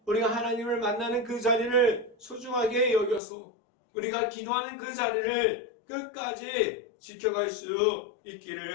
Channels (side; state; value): right; drops out; at 3.2 s